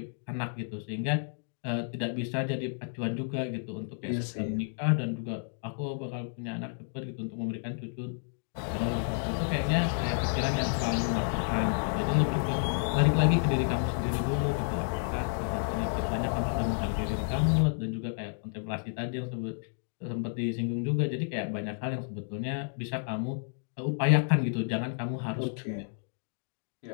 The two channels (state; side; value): silent; right; digital silence